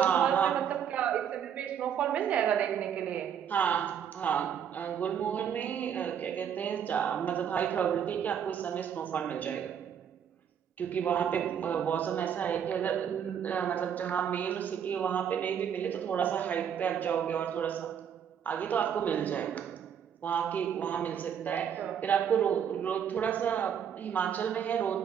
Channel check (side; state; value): left; quieter; 8.4 dB